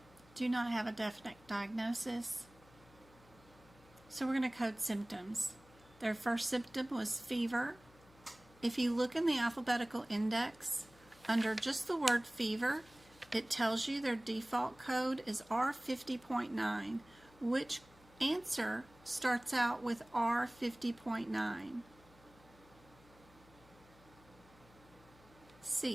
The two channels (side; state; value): left; noise; hum, 25 dB below the sound